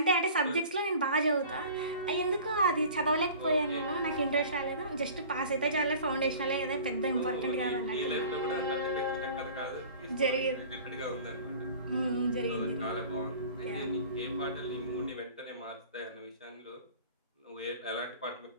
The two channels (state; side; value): inverted; both; correlation -0.44